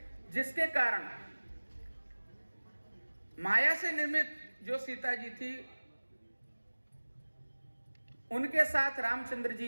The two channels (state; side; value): inverted; both; correlation -1.00